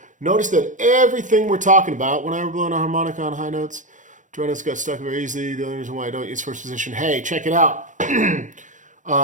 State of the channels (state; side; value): late; left; 0.37 ms